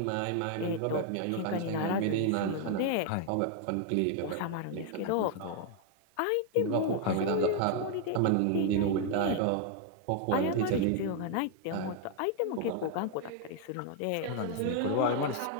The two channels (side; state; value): both; different; correlation 0.00